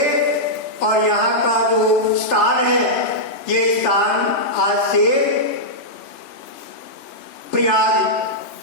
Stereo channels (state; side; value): late; right; 3.3 ms